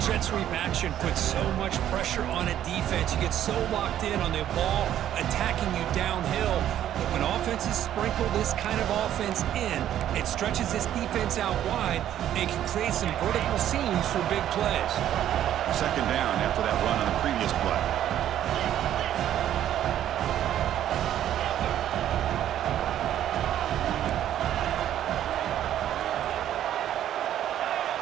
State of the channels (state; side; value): quieter; left; 11.3 dB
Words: jet sweep action puts so much pressure on a defense. You get so locked in on the ball attacking you downhill. But when offenses sprinkle this kind of offense in, it stretches this defense out wide and can create some vertical seams for big plays. 2nd down after that run on the previous play.